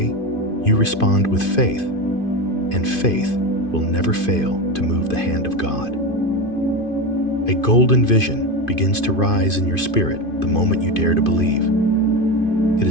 you respond with faith, and faith will never fail to move the hand of God. A golden vision begins to rise in your spirit the moment you dare to believe. It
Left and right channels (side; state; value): right; late; 2.5 ms